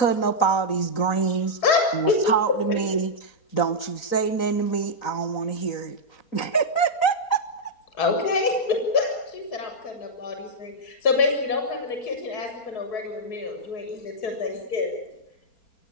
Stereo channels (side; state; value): right; late; 3.9 ms